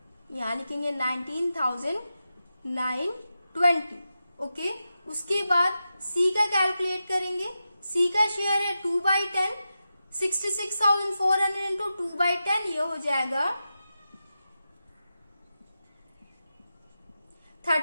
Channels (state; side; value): inverted; both; correlation -0.90